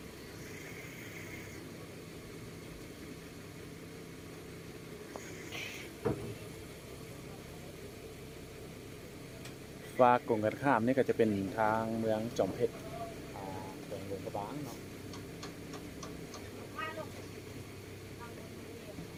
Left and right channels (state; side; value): identical; both; correlation 1.00